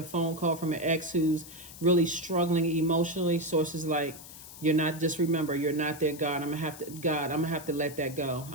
phone call from an ex who's really struggling emotionally. Sources like, you're not, just remember, you're not their God. I'm gonna have to let that go.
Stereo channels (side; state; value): left; noise; hiss, 15 dB below the sound